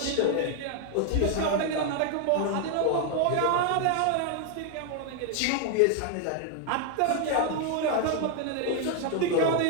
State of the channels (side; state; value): both; different; correlation 0.00